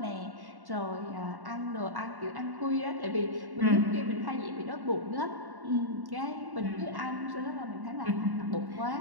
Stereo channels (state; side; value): late; left; 1.1 ms